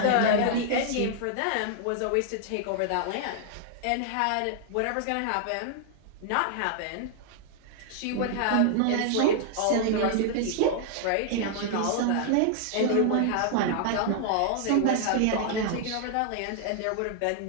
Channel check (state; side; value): different; both; correlation -0.01